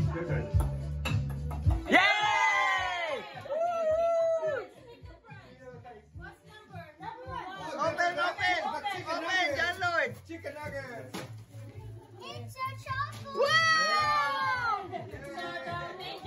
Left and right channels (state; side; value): identical; both; correlation 1.00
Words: turn. Yay! What's number 1? Open, John Lloyd. Chicken nuggets. It's a chocolate! Wow!